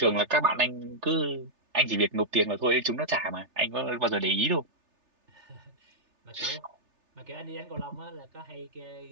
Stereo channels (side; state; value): left; late; 3.3 ms